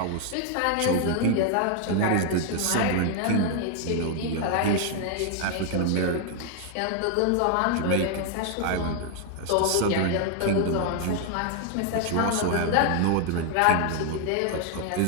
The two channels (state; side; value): different; both; correlation 0.00